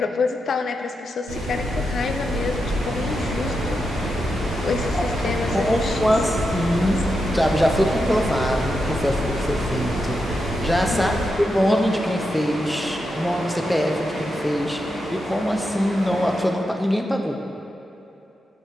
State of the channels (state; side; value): normal; both; correlation 0.86